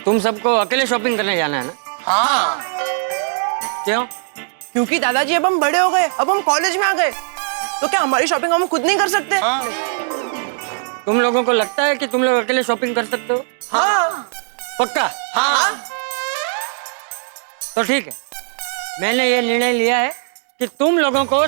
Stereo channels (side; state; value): left; silent; digital silence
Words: तुम सबको अकेले शॉपिंग करने जाना है ना? हाँ। क्यों? क्योंकि दादाजी अब हम बड़े हो गए, अब हम कॉलेज में आ गए, तो क्या हमारी शॉपिंग हम खुद नहीं कर सकते? हाँ। तुम लोगों को लगता है कि तुम लोग अकेले शॉपिंग कर सकते हो? हाँ। पक्का? हाँ। तो ठीक है, मैंने ये निर्णय लिया है कि तुम लोगों को